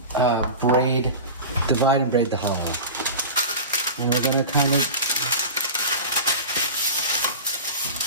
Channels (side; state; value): both; inverted; correlation -0.30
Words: divide and braid the hollow. And we're going to kind of